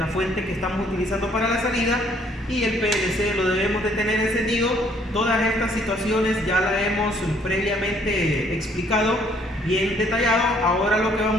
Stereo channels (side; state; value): both; normal; correlation 0.64